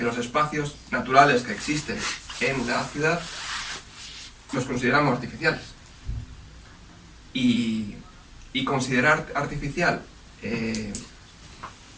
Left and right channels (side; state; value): both; identical; correlation 1.00